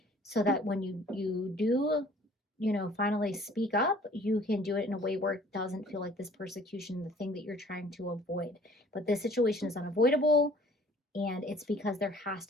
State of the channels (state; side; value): normal; both; correlation 0.54